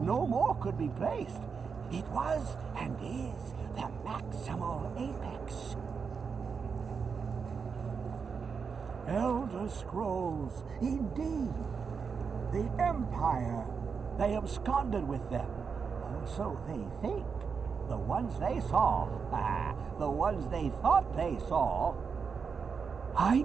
no more could be placed. It was and is the maximal apex. Elder Scrolls, indeed. The Empire. They absconded with them. Or so they think. The ones they saw. The ones they thought they saw. I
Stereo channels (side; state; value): left; quieter; 5.8 dB